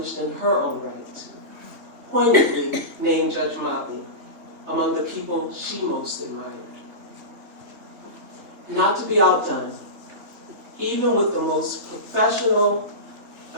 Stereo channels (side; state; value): left; late; 3.5 ms